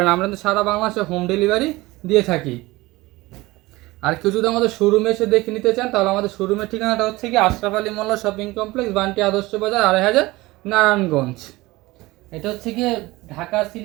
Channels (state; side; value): quieter; left; 20.3 dB